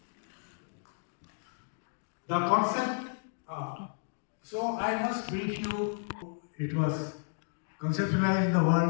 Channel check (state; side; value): silent; right; digital silence